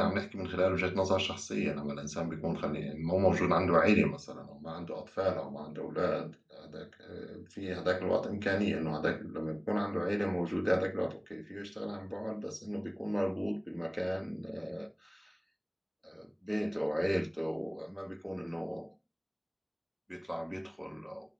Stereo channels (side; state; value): both; identical; correlation 1.00